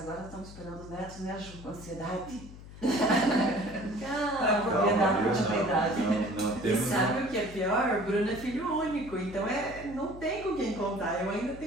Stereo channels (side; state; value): left; noise; hum, 16 dB below the sound